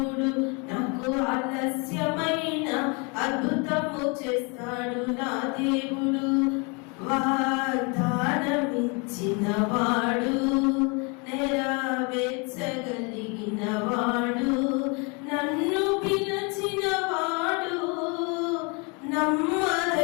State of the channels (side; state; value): right; quieter; 32.0 dB